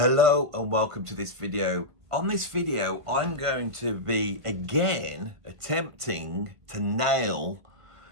and welcome to this video. On this video, I'm going to be again attempting to nail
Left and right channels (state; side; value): late; left; 1.5 ms